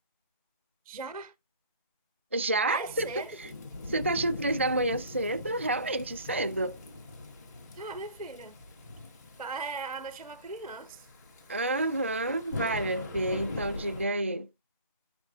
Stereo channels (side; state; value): both; inverted; correlation -0.46